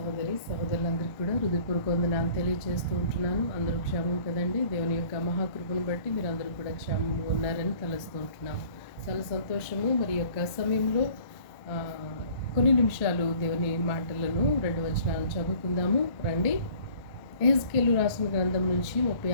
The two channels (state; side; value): late; right; 1.0 ms